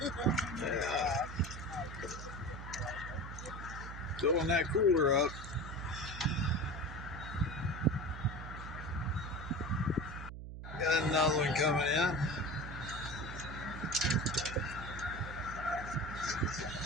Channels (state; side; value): noise; right; hum, 9 dB below the sound